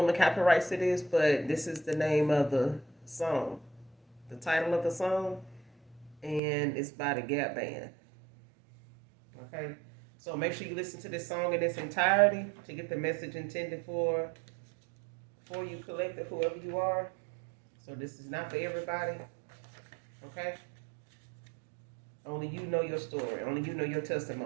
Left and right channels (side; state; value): left; drops out; at 6.4 s